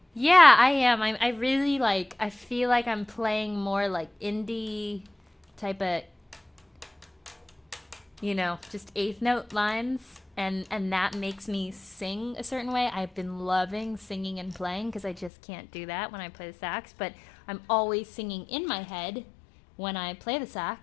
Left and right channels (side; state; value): right; drops out; at 15.3 s